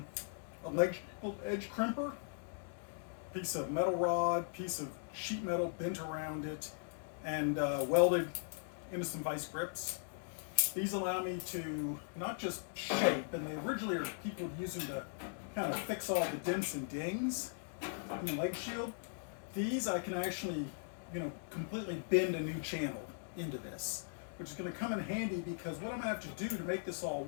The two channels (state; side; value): silent; right; digital silence